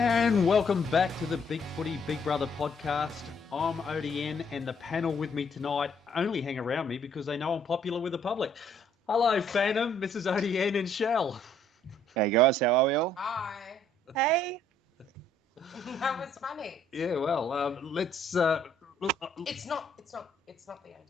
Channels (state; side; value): normal; both; correlation 0.65